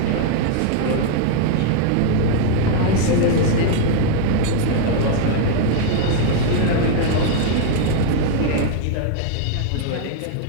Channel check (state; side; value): different; both; correlation 0.00